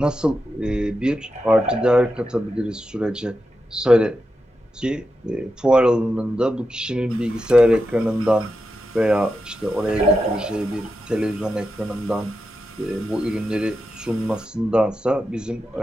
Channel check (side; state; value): both; normal; correlation 0.88